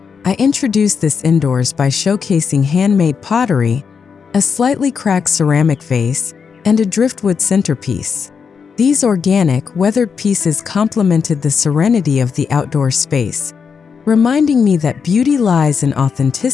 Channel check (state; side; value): quieter; right; 6.1 dB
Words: I introduced this indoors by showcasing handmade pottery, a slightly cracked ceramic vase, and a driftwood centerpiece. These organic, weathered pieces complemented the serenity of the outdoor space, reminding me that beauty lies in